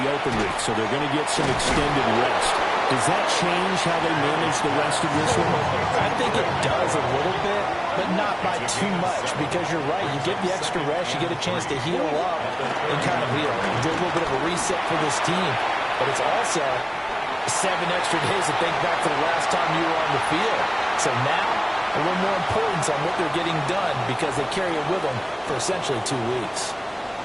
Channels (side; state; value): both; identical; correlation 1.00